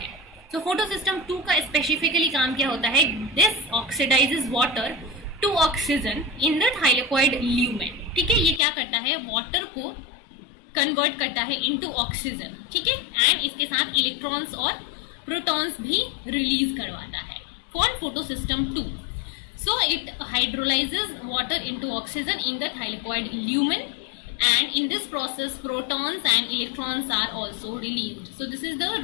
तो फोटोसिस्टम 2 का स्पेसिफिकली काम क्या होता है? This oxidises water to oxygen in the thylakoid lumen. ठीक है, ये क्या करता है? वाटर को कन्वर्ट करता है इनटू ऑक्सीजन, ठीक है, एंड इसके साथ इलेक्ट्रॉन्स और प्रोटॉन्स भी रिलीज करवाता है for photosystem 2। So it hydrolyzes water into oxygen in the thylakoid lumen, and in this process protons and electrons are also released. So this is the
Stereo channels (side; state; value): right; drops out; at 8.6 s